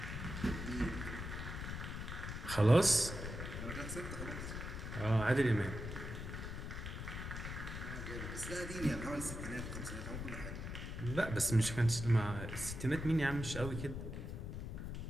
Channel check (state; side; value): noise; left; rumble, 6 dB below the sound